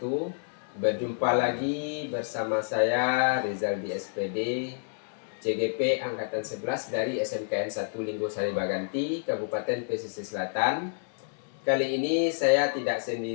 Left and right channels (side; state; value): right; silent; digital silence